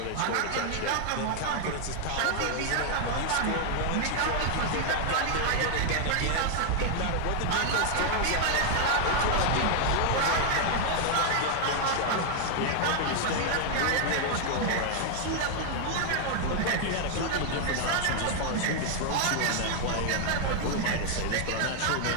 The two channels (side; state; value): both; different; correlation 0.00